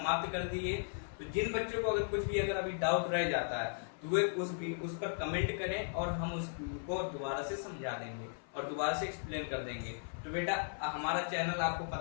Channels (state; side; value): silent; right; 53 dB below the other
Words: कर दी है। तो जिन बच्चों को अगर अभी डाउट रह जाता है तो वे उस पर कमेंट करें और हम उसको दोबारा से समझा देंगे और दोबारा से एक्सप्लेन कर देंगे। तो बेटा हमारा चैनल आपको